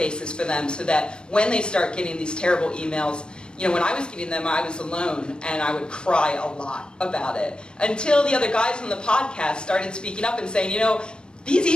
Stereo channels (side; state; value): right; late; 0.050 ms